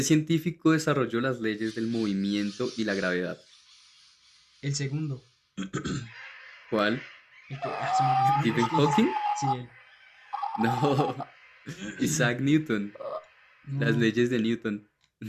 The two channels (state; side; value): identical; both; correlation 1.00